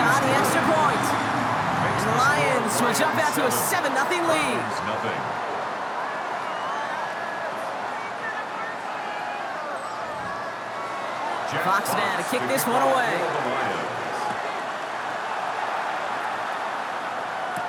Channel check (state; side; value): identical; both; correlation 1.00